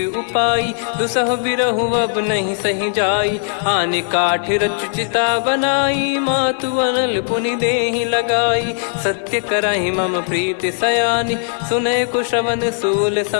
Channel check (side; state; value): right; silent; digital silence